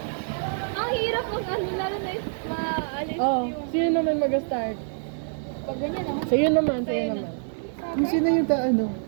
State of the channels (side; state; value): left; silent; digital silence